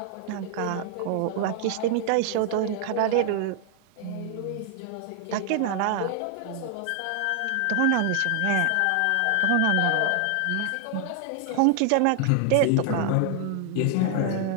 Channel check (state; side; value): different; both; correlation 0.00